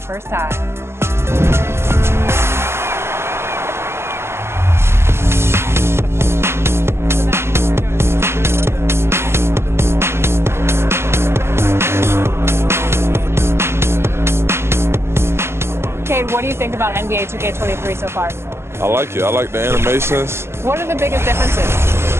first time. Cade, what do you think about NBA 2K23 so far? I like it. I like the animations. What are the biggest differences?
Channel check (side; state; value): left; late; 0.12 ms